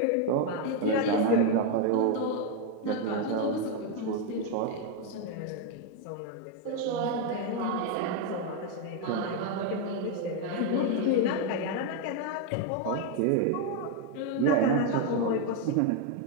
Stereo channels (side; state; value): both; different; correlation 0.01